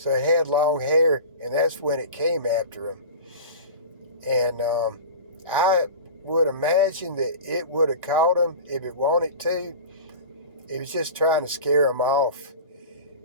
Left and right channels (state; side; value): inverted; both; correlation -0.33